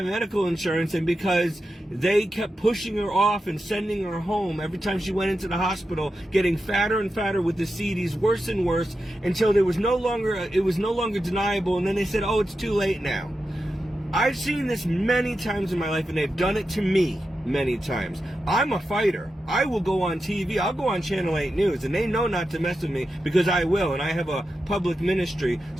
medical insurance and because they kept pushing her off and sending her home every time she went into the hospital, getting fatter and fatter with the CDs, worse and worse, until it was no longer deniable, and then they said, oh, it's too late now. I've seen this many times in my life, and they've done it to me many times. I'm a fighter. I will go on TV. I'll go on Channel 8 News, and they know not to mess with me because I will, and I have a public ministry,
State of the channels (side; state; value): both; normal; correlation 0.89